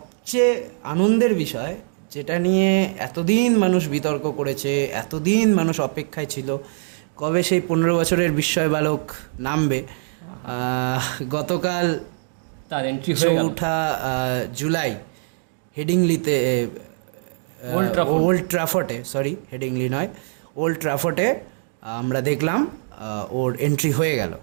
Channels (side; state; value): left; silent; digital silence